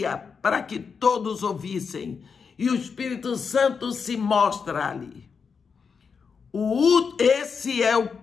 para que todos ouvissem. E o Espírito Santo se mostra ali. Esse é o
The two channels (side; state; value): right; quieter; 5.8 dB